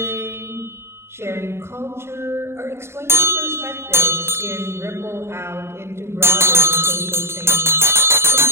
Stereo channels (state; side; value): late; left; 0.12 ms